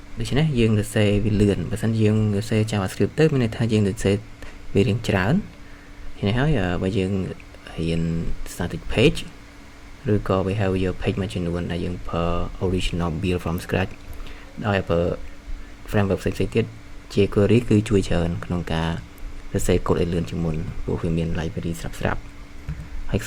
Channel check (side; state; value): both; identical; correlation 1.00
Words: ដូច្នេះយើងសរសេរវាលឿនបើមិនយើងសរសេរ JavaScript ទៅមានន័យថាយើងសរសេរវារៀងច្រើននេះហើយបើយើងរៀន static page ឬក៏ behavior page មួយចំនួនដែលយើងប្រើ original build from scratch ដោយប្រើ framework ផ្សេងៗទៀត jQuery គឺជួយច្រើនក្នុងការសរសេរកូដឲ្យលឿនជាងមុនព្រោះវាមាន library ស្រាប់ហើយខ